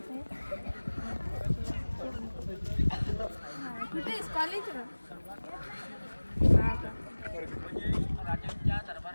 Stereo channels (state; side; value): inverted; both; correlation -1.00